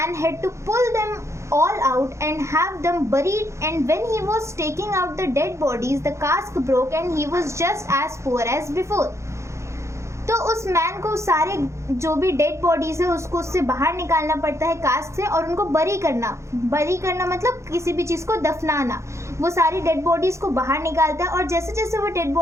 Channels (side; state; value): left; late; 0.14 ms